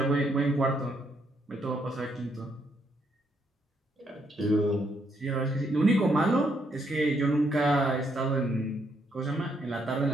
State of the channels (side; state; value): both; normal; correlation 0.74